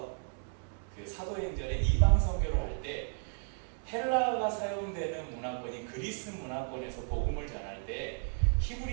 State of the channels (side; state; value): left; silent; 55 dB below the other